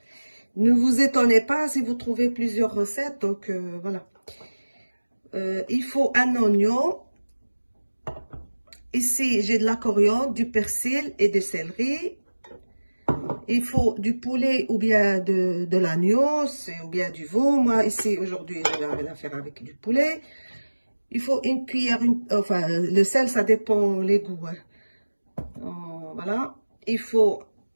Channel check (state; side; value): inverted; both; correlation -1.00